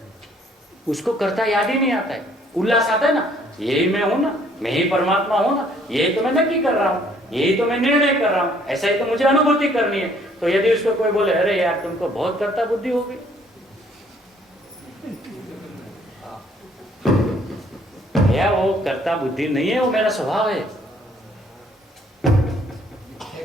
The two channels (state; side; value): normal; both; correlation 0.62